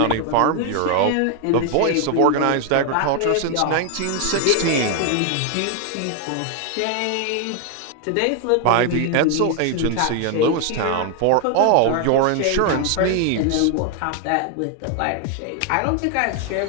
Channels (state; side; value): different; both; correlation 0.01